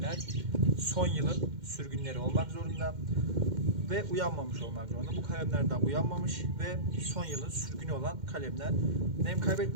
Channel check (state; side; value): late; left; 2.1 ms